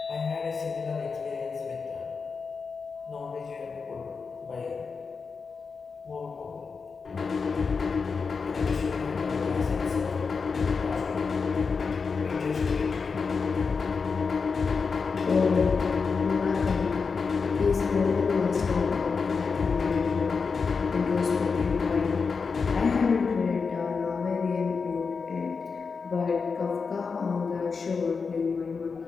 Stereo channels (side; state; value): right; quieter; 5.1 dB